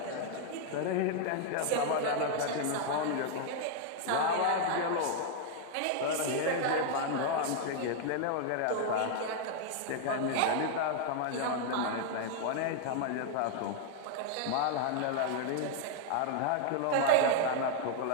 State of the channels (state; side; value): different; both; correlation 0.00